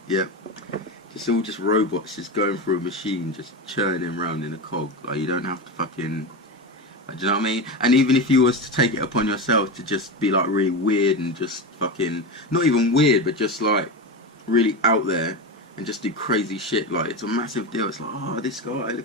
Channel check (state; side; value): normal; both; correlation 0.19